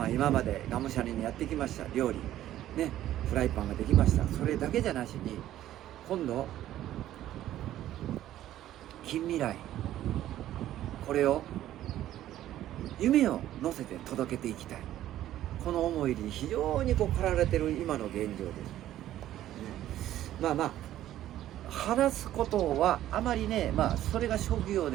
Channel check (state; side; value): quieter; left; 13.0 dB